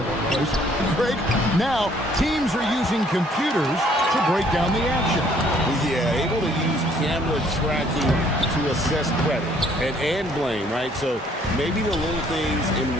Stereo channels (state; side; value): normal; both; correlation 0.62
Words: workplace. Greg, now teams are using computers to break down the action. Yeah, able to use camera tracking to assess credit and blame, right? So maybe the little things in